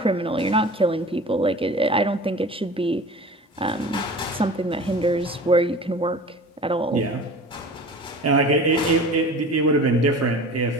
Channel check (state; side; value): normal; both; correlation 0.39